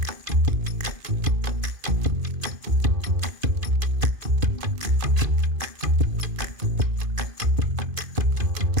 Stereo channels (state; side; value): late; left; 2.5 ms